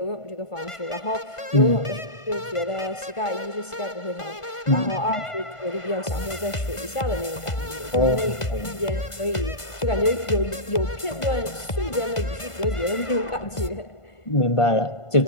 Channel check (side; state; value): right; late; 1.5 ms